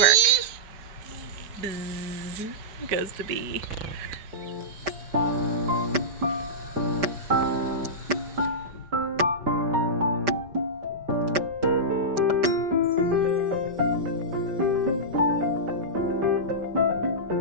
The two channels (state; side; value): late; left; 5.1 ms